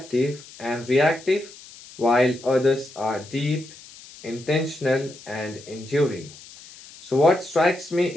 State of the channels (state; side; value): noise; left; hiss, 19 dB below the sound